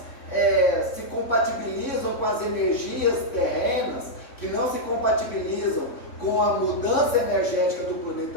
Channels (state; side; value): late; right; 3.6 ms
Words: se compatibilizam com as energias terrenas, que não se compatibilizam com a mudança energética do